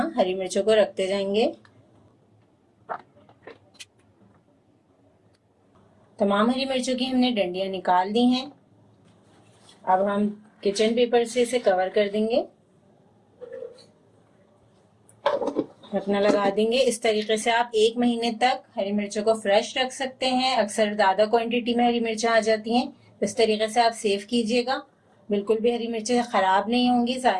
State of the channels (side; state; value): both; identical; correlation 1.00